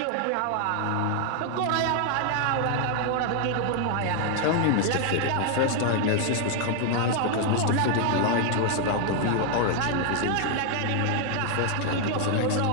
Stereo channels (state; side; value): different; both; correlation 0.00